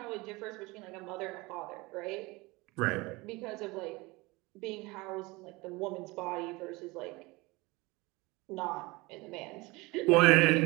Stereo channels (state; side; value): quieter; left; 23.3 dB